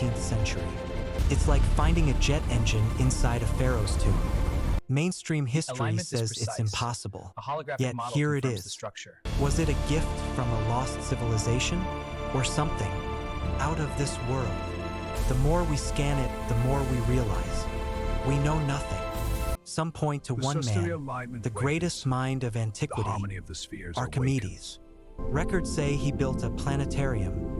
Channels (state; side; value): identical; both; correlation 1.00